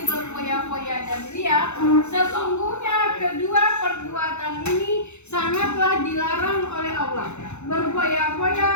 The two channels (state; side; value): late; right; 0.82 ms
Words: berfoya-foya dan ria. Sesungguhnya kedua perbuatan ini sangatlah dilarang oleh Allah. Berfoya-foya